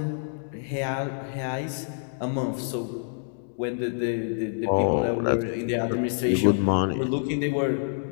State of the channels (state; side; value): silent; right; digital silence